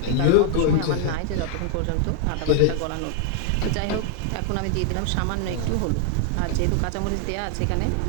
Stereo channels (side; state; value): both; different; correlation 0.00